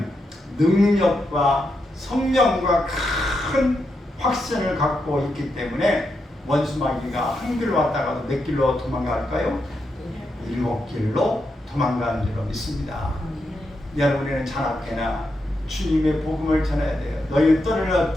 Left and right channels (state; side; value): normal; both; correlation 0.84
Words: 능력과 성령과 큰 확신을 갖고 있기 때문에 원수마귀가 한 길로 왔다가도 몇 길로 도망갈까요? 7길로 도망가는 줄로 믿습니다. 여러분에는 자나깨나 주님의 복음을 전해야 돼요. 너희는 떨을